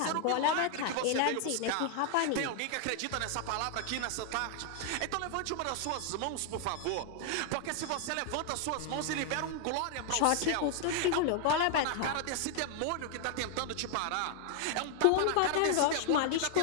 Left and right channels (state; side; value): different; both; correlation 0.00